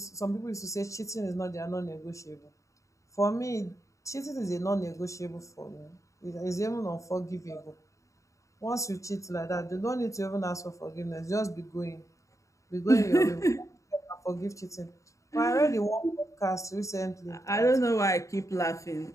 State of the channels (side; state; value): right; late; 0.15 ms